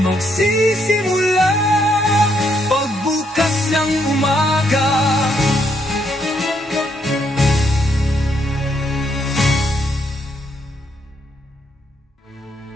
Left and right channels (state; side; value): normal; both; correlation 0.74